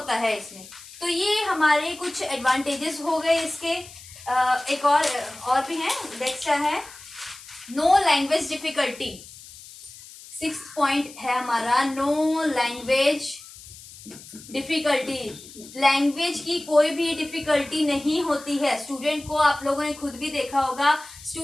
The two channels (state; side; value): noise; left; hiss, 18 dB below the sound